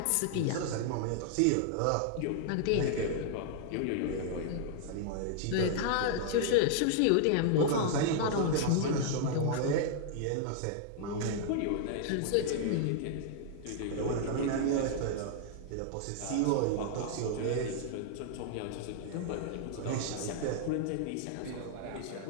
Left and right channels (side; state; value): both; different; correlation -0.01